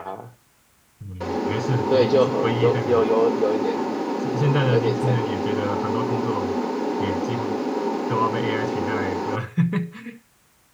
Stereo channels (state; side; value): identical; both; correlation 1.00